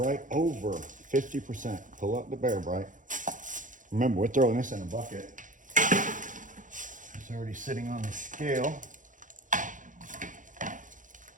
over 50%. Pull up the bare bright. Remember, we're throwing this in a bucket. It's already sitting on the scale.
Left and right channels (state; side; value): late; left; 0.38 ms